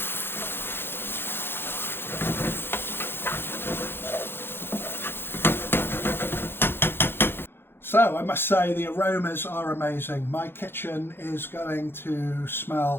So I must say the aromas are amazing. My kitchen is going to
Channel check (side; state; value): right; late; 0.11 ms